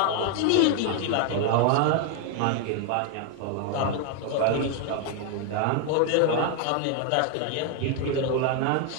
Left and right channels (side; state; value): both; different; correlation 0.00